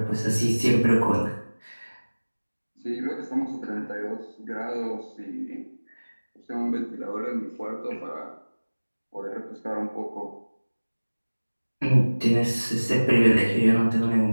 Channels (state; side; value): inverted; both; correlation -1.00